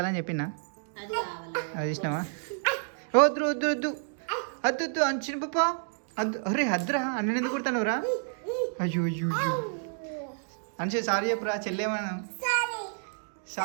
చెప్పినా అది ఇష్టమా వద్దు వద్దు వద్దు అద్దు వద్దు అంచిన పప్ప అద్దు అరే అద్దురా అన్న ఎందుకు కుడతానురా అయ్యో అయ్యో అయ్యో అనుష సారీ చెప్పురా చెల్లేమన్నా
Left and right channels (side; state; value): left; silent; digital silence